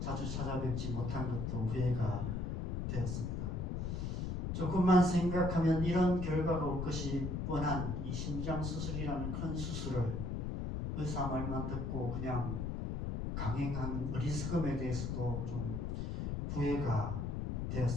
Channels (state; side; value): noise; left; rumble, 2 dB below the sound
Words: 찾아뵙지 못한 것도 후회가 되었습니다. 조금만 생각하면 이런 결과가 올 것이 뻔한 이 심장 수술이라는 큰 수술을 의사 말만 듣고 그냥 강행한 어리석음에 대해서도 좀 후회가